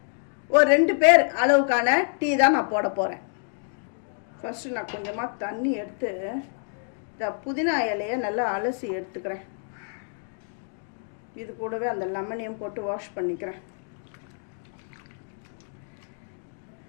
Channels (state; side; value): silent; right; digital silence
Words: ஒரு 2 பேர் அளவுக்கான டீ தான் நான் போட போகிறேன். ஃபஸ்ட்டு நான் கொஞ்சமாக தண்ணி எடுத்து இந்த புதினா இலையை நல்லா அலசி எடுத்துக்கிறேன். இது கூடவே அந்த லெமனையும் போட்டு வாஷ் பண்ணிக்கிறேன்.